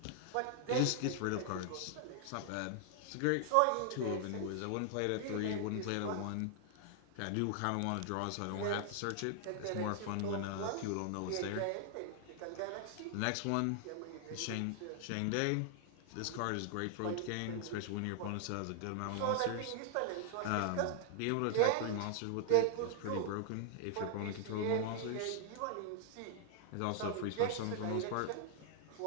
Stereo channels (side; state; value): both; different; correlation 0.00